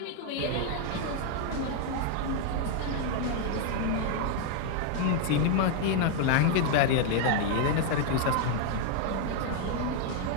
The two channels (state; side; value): different; both; correlation 0.00